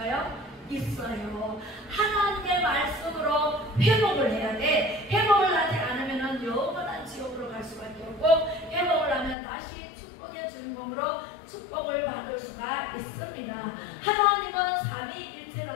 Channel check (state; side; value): drops out; right; at 9.3 s